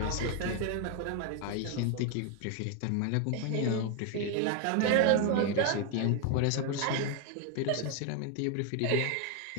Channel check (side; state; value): both; different; correlation 0.00